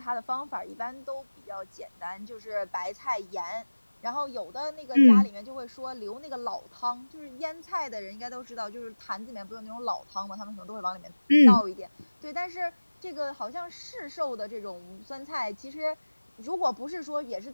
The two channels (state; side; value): inverted; both; correlation -1.00